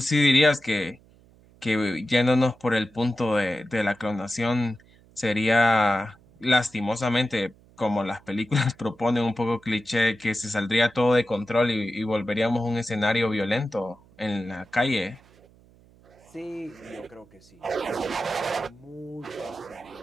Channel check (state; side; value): noise; right; hum, 28 dB below the sound